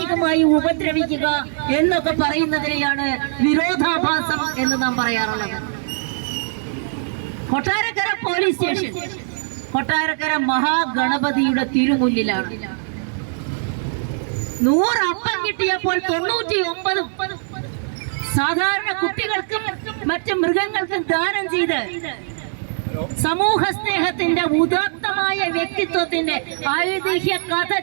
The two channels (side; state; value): left; silent; digital silence